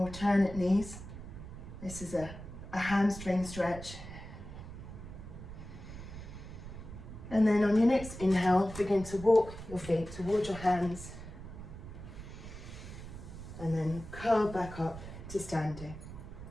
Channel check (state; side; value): noise; right; rumble, 12 dB below the sound